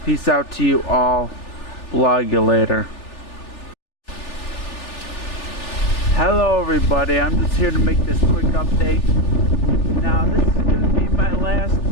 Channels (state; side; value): late; right; 3.4 ms